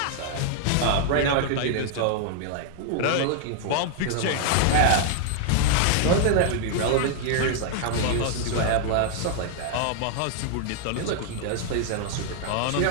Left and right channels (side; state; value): both; different; correlation 0.00